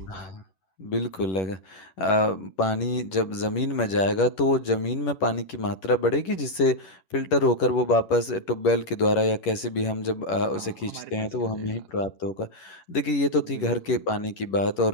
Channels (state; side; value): late; right; 11 ms